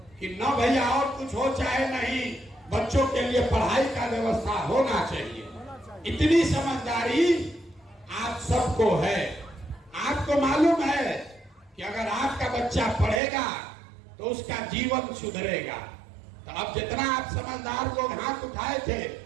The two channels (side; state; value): left; drops out; at 13.2 s